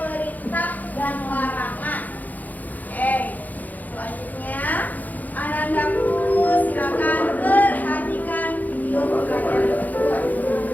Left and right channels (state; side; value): late; right; 0.081 ms